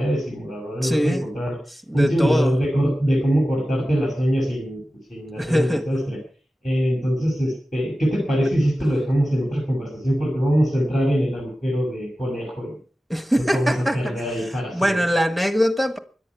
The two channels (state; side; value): normal; both; correlation 0.95